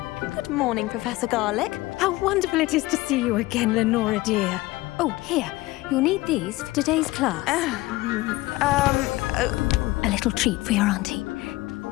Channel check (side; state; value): right; quieter; 19.4 dB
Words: Good morning, Professor Garlic. How wonderful it is to see you again, Lenora dear. Oh, here. You'll need these for today's class. A little treat for your auntie.